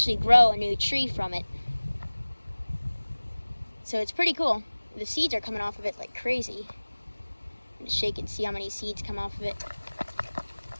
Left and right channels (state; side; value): inverted; both; correlation -1.00